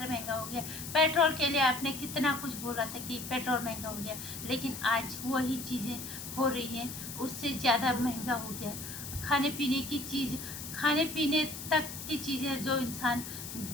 महंगा हो गया। पेट्रोल के लिए आपने कितना कुछ बोला था कि पेट्रोल महंगा हो गया, लेकिन आज वही चीज़ें हो रही हैं, उससे ज़्यादा महंगा हो गया। खाने पीने की चीज़, खाने पीने तक की चीज़ें जो इंसान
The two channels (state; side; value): noise; left; hiss, 9 dB below the sound